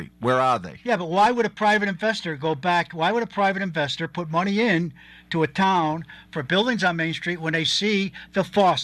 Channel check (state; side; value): identical; both; correlation 1.00